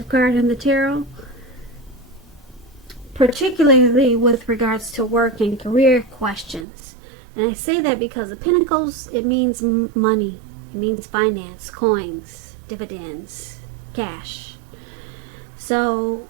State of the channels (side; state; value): left; drops out; at 6.7 s